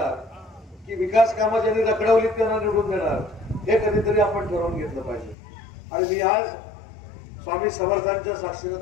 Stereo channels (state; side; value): drops out; right; at 5.4 s